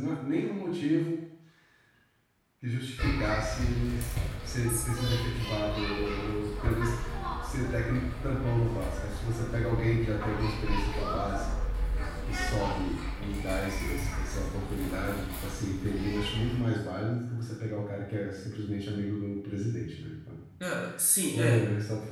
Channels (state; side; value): identical; both; correlation 1.00